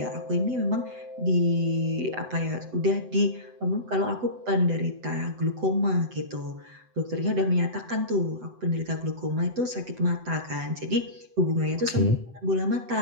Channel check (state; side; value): late; left; 7.9 ms